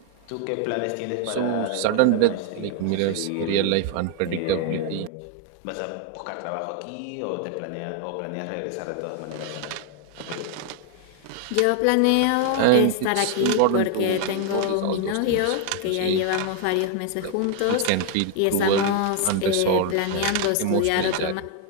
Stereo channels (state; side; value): different; both; correlation 0.00